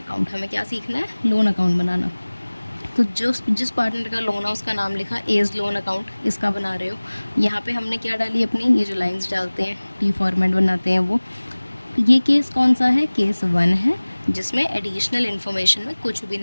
हमें क्या सीखना है, लोन अकाउंट बनाना। तो जिस पार्टनर का लोन है उसका नाम लिखा एज लोन अकाउंट, इसका बना रहे हो। यहाँ पे हमने क्या डाली अपनी, ये जो लाइंस डालते हैं टी फॉर्मेट बनाते हैं वो। ये केस कौन सा है, केस 1 है, जिसमें एडिशनल इन्फॉर्मेशन में कुछ भी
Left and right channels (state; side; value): inverted; both; correlation -1.00